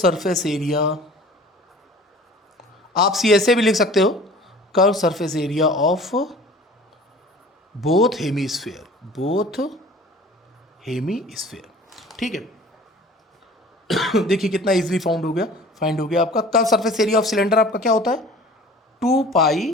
area, आप CSA भी लिख सकते हो, curve surface area of both hemisphere. ठीक है, देखिए कितना इजीली फाइंड हो गया आपका curve surface area of cylinder. आपका क्या होता है?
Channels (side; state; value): both; normal; correlation 0.45